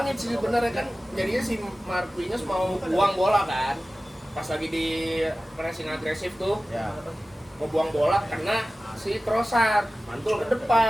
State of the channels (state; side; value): normal; both; correlation 0.96